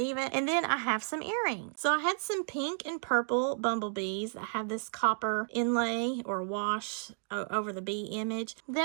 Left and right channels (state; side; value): silent; left; 56 dB below the other